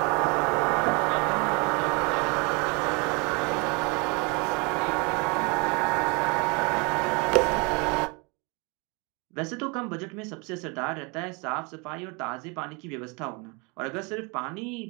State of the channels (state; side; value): quieter; left; 30.6 dB